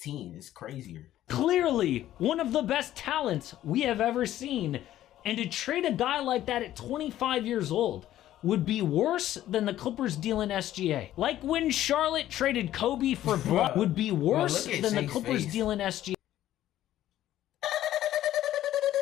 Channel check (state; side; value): quieter; right; 13.1 dB